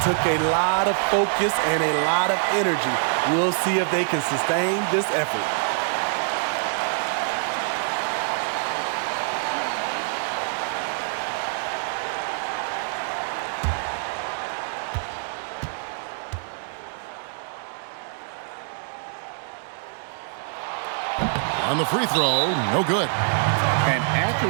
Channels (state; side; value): silent; left; 62 dB below the other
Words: took a lot of focus and a lot of energy. We'll see if they can sustain this effort. on the free throw, no good. An